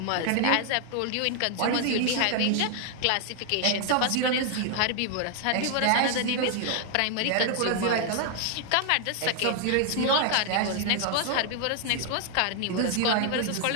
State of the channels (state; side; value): different; both; correlation 0.00